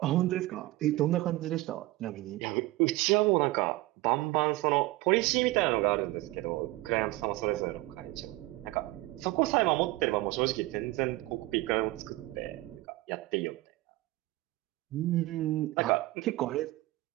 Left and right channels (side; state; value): left; quieter; 19.3 dB